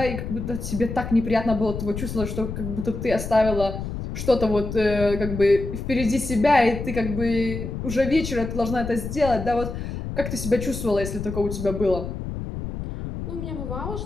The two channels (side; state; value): left; noise; rumble, 6 dB below the sound